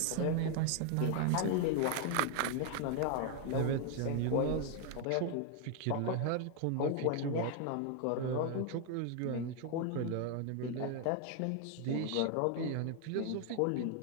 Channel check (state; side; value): different; both; correlation 0.00